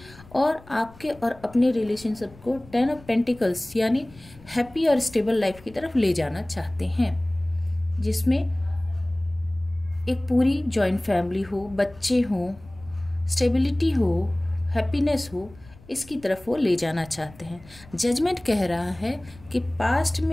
और आपके और अपने रिलेशनशिप को 10 ऑफ पेंटिकल्स यानी हैप्पी और स्टेबल लाइफ की तरफ ले जाना चाहते हैं, जिसमें एक पूरी जॉइंट फैमिली हो, बच्चे हों, स्टेबिलिटी हो, हैप्पीनेस हो, इसकी तरफ वो ले जाना चाहते हैं। जजमेंट कह रहा है कि पास्ट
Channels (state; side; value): noise; left; rumble, 22 dB below the sound